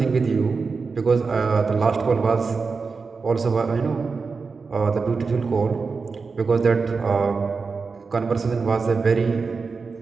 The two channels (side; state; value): left; quieter; 4.7 dB